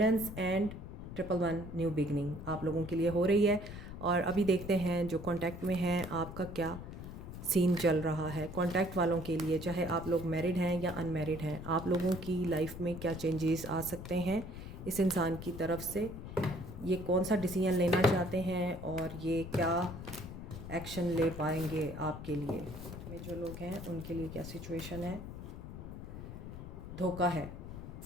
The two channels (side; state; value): left; noise; rumble, 10 dB below the sound